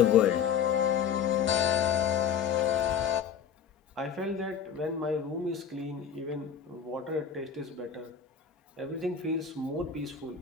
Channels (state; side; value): quieter; right; 7.6 dB